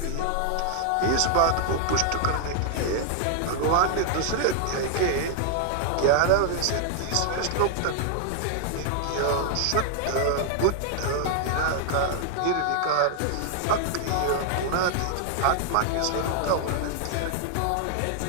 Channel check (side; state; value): both; different; correlation 0.00